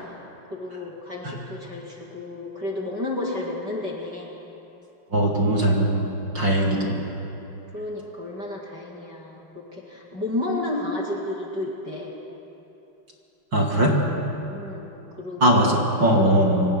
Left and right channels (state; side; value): late; left; 5.6 ms